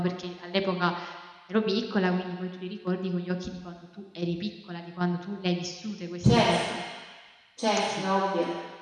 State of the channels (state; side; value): identical; both; correlation 1.00